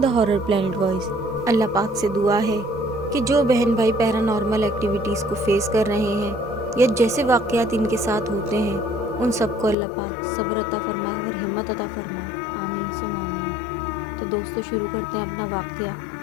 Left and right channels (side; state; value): right; drops out; at 9.8 s